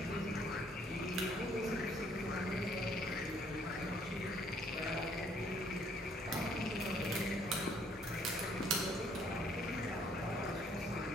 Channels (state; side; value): normal; both; correlation 0.64